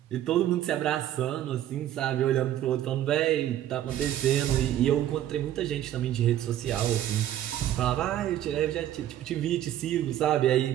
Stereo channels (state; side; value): quieter; left; 12.0 dB